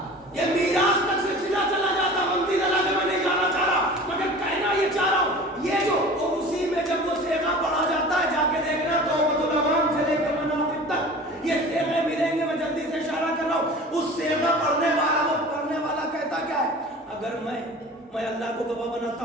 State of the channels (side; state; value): both; normal; correlation 0.40